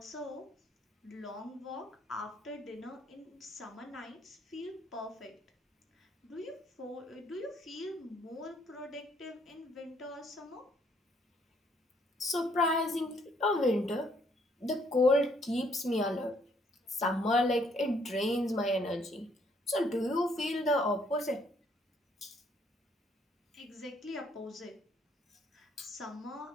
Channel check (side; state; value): both; normal; correlation 0.67